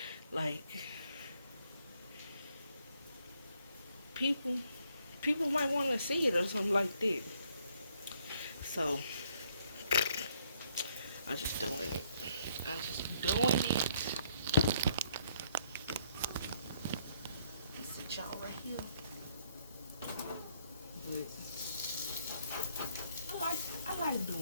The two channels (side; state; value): both; inverted; correlation -0.68